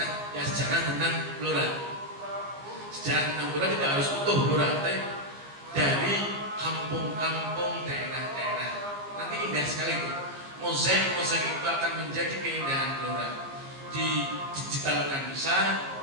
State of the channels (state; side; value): late; left; 15 ms